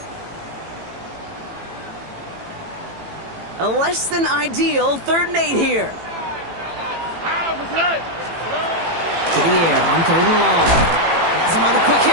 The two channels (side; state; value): left; late; 18 ms